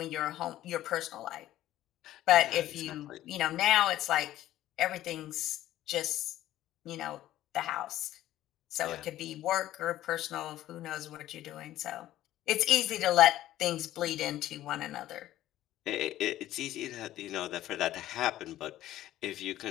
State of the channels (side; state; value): right; quieter; 13.9 dB